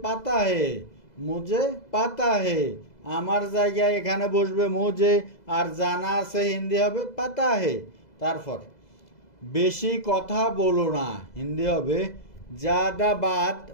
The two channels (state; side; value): late; right; 2.0 ms